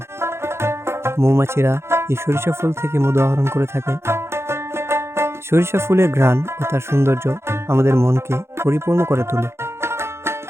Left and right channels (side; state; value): left; late; 0.12 ms